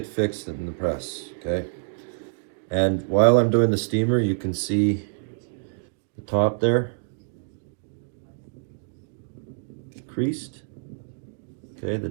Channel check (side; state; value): left; silent; digital silence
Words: fixed in the press, okay? And while I'm doing the steamer, you can see the top there, creased. Okay, the